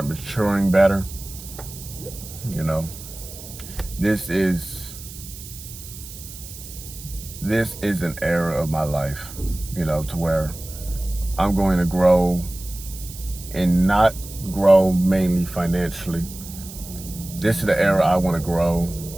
maturing better. This is an era of my life, to where I'm going to grow, and not grow mainly financially. This is the era I want to grow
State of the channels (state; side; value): noise; right; hiss, 14 dB below the sound